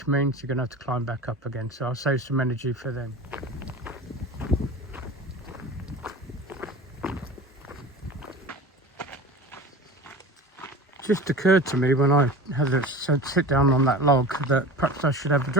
means you're going to have to climb back up again. So I'll save some energy for them. Just occurred to me when I had to sit down on that log that perhaps I should have a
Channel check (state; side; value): normal; both; correlation 0.34